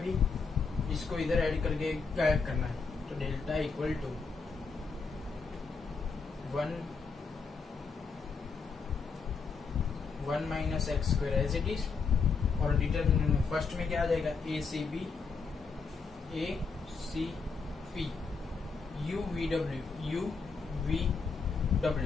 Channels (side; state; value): right; quieter; 4.9 dB